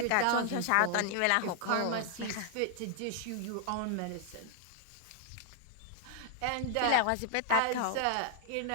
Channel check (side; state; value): both; different; correlation 0.00